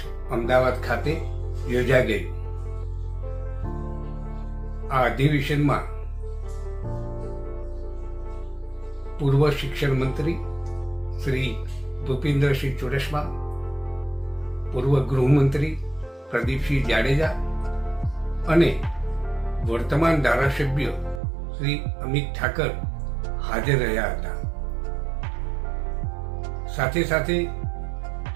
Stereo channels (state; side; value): drops out; left; at 21.2 s